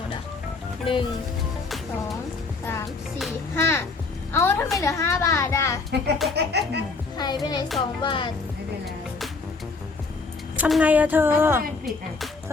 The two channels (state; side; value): quieter; right; 4.2 dB